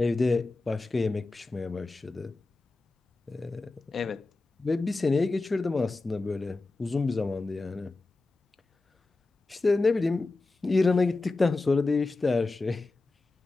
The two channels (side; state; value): right; quieter; 3.4 dB